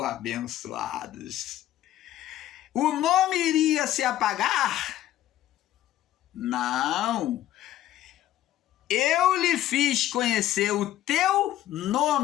Abençoados. O nome iria se apagar? Não. Eu lhe fiz conhecer o teu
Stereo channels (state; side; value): quieter; right; 13.2 dB